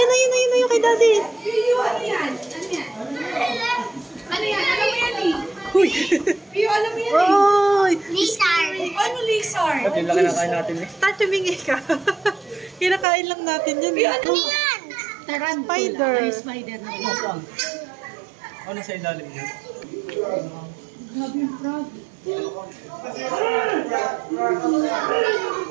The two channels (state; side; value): drops out; left; at 13.1 s